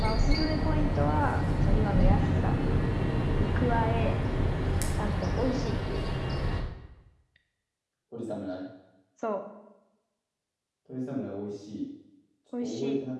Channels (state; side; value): identical; both; correlation 1.00